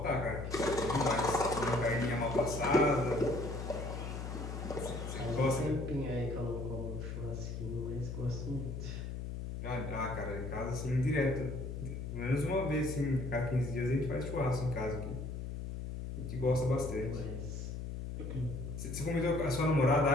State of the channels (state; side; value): noise; left; hum, 6 dB below the sound